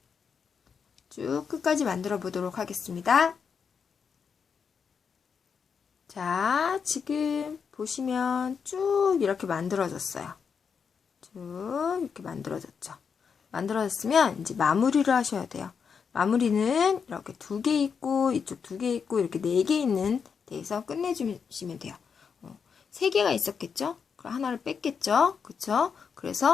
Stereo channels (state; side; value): quieter; right; 6.3 dB